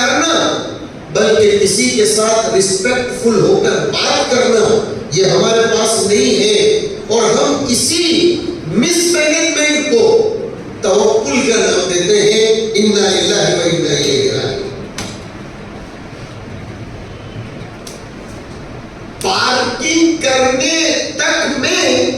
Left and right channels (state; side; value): identical; both; correlation 1.00